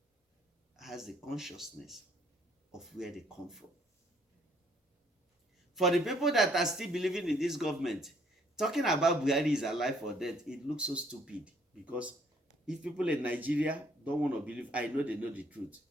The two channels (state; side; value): normal; both; correlation 0.65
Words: has the consciousness of where they come from. For the people that are still believing in this government, talking about Buhari is alive or dead, it looks so stupid. Because if people in Nigeria don't want to believe, I know they know the truth.